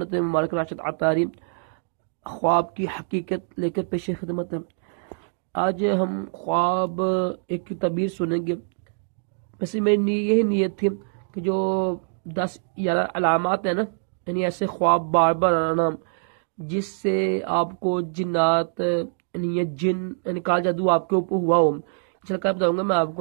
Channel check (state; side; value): silent; left; digital silence